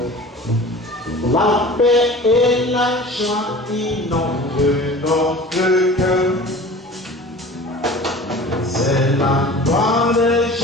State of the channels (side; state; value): both; normal; correlation 0.40